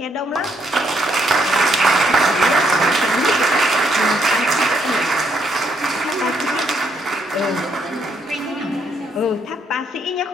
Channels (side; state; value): both; normal; correlation 0.72